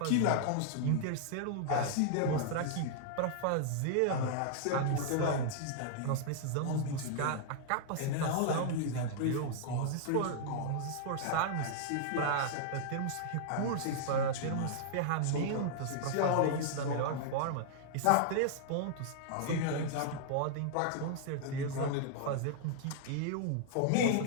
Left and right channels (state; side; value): different; both; correlation -0.01